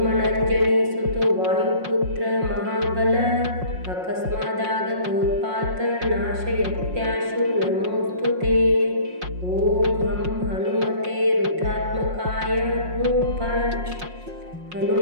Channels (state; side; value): late; left; 5.5 ms